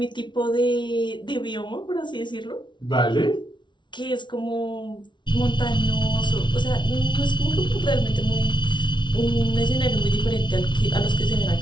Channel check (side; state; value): right; late; 0.23 ms